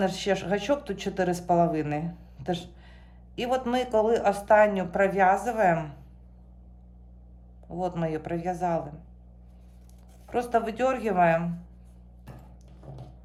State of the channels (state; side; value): identical; both; correlation 1.00